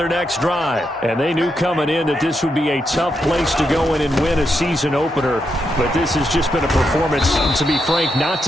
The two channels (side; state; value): both; normal; correlation 0.82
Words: next drive. And they knew coming in that this would be a tough place to go in and win a season opener. But this has just been a performance, to be frank, not